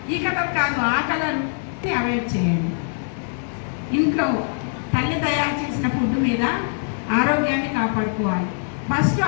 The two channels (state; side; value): silent; right; 63 dB below the other